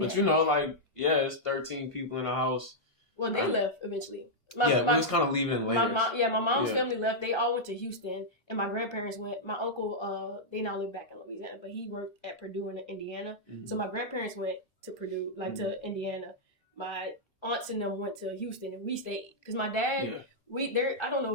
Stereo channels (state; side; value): normal; both; correlation -0.07